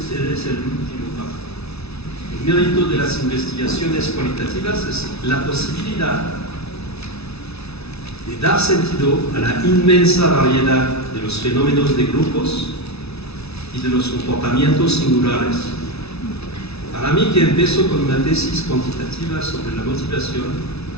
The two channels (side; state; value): right; late; 0.79 ms